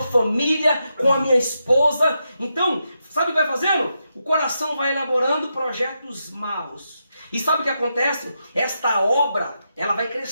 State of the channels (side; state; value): both; inverted; correlation -0.85